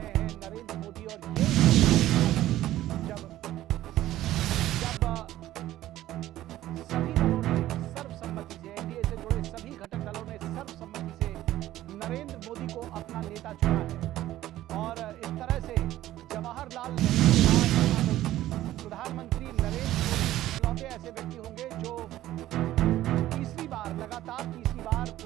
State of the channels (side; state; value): left; quieter; 14.4 dB